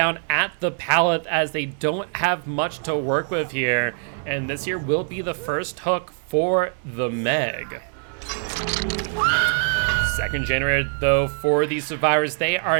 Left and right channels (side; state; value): left; silent; 63 dB below the other